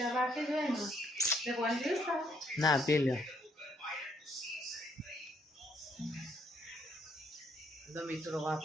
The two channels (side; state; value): both; normal; correlation 0.70